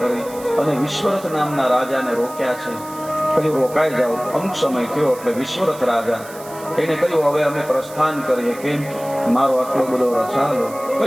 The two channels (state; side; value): noise; right; hiss, 18 dB below the sound